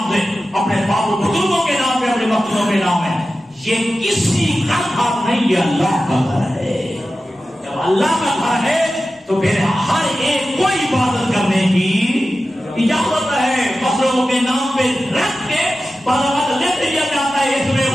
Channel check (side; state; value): both; normal; correlation 0.94